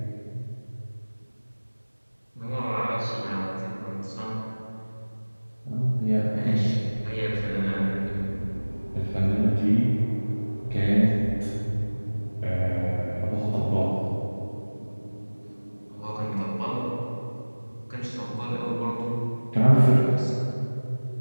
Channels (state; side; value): inverted; both; correlation -1.00